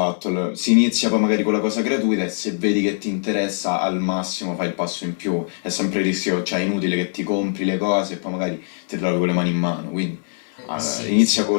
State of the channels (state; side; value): silent; right; 63 dB below the other